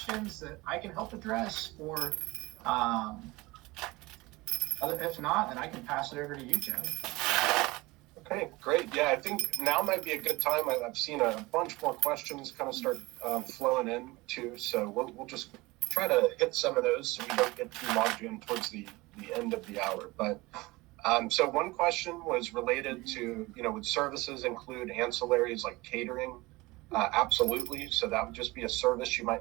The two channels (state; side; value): quieter; left; 21.9 dB